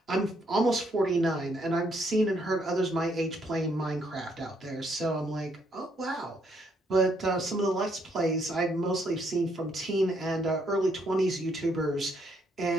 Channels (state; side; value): normal; both; correlation 0.72